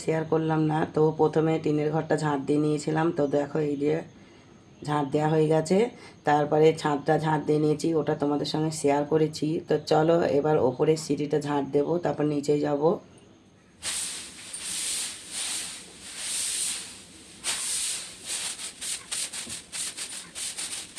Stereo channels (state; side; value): identical; both; correlation 1.00